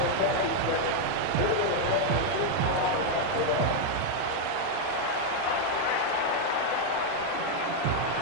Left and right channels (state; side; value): different; both; correlation 0.00